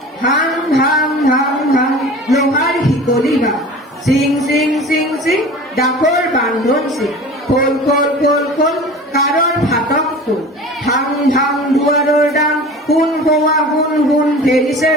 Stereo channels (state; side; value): normal; both; correlation 0.38